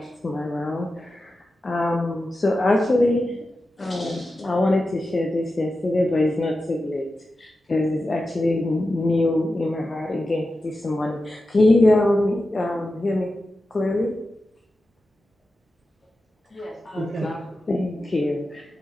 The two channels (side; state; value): both; normal; correlation 0.92